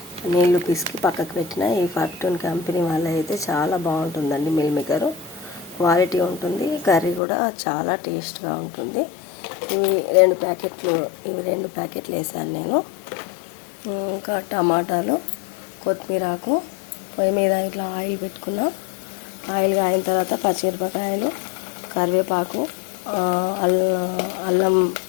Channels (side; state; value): right; drops out; at 7.2 s